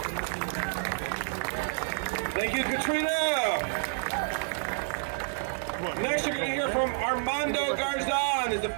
Thank you, Katrina. Next, you're going to hear from Armando Garzon, is the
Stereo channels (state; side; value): silent; left; digital silence